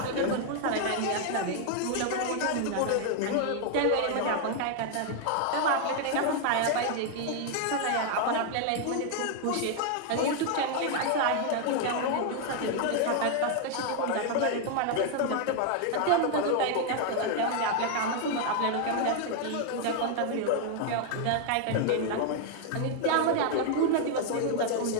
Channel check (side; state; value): both; different; correlation 0.00